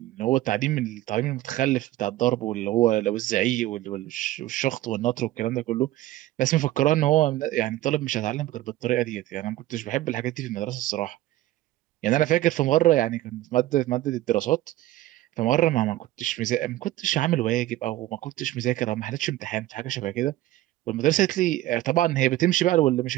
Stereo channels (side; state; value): left; quieter; 15.6 dB